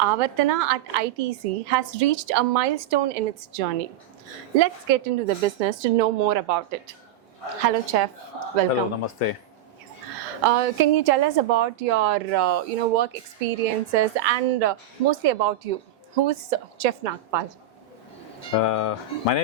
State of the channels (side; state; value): left; quieter; 9.3 dB